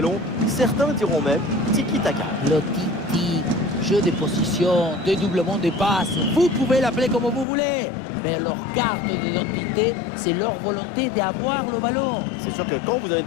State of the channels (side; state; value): right; drops out; at 7.5 s